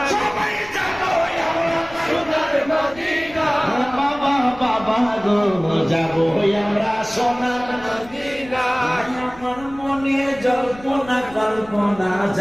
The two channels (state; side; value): noise; left; rumble, 21 dB below the sound